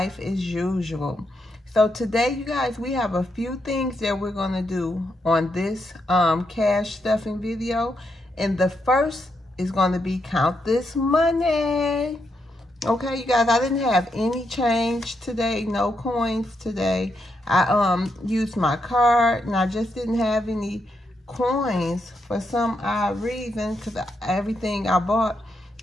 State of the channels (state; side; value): normal; both; correlation 0.81